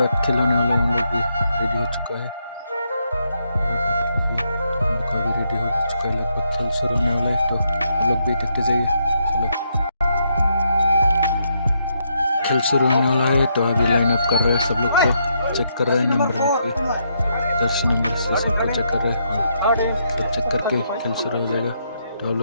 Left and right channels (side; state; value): both; inverted; correlation -0.78